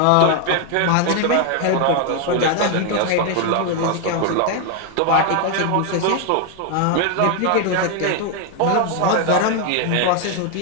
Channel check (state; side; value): different; both; correlation 0.01